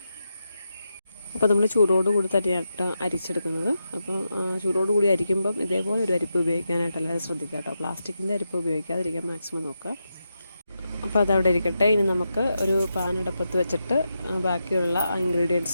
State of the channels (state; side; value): inverted; both; correlation -0.87